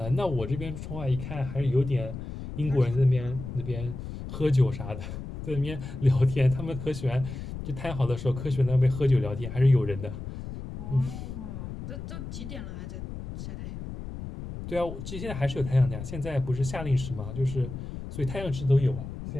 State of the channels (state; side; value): noise; left; rumble, 9 dB below the sound